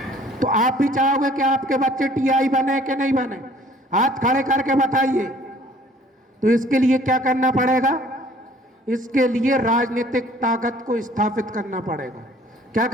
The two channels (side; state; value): both; normal; correlation 0.55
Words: तो आप भी चाहोगे कि आपके बच्चे टीआई बने कि नहीं बने? हाथ खड़े करके बताइए। तो इसके लिए क्या करना पड़ेगा? इसके लिए राजनीतिक ताकत को स्थापित करना पड़ेगा। क्या